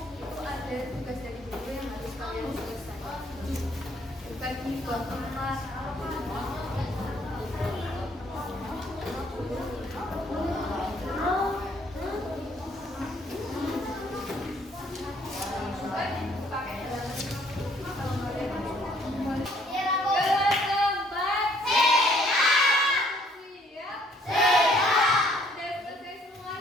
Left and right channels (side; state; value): both; normal; correlation 0.63